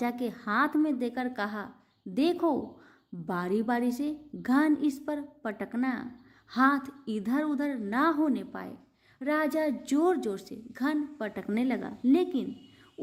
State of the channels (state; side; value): identical; both; correlation 1.00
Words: के हाथ में देकर कहा, देखो, बारी बारी से घन इस पर पटकना, हाथ इधर उधर ना होने पाए। राजा जोर जोर से घन पटकने लगा, लेकिन